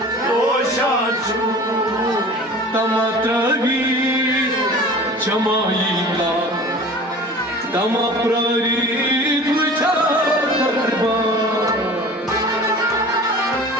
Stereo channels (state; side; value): normal; both; correlation 0.41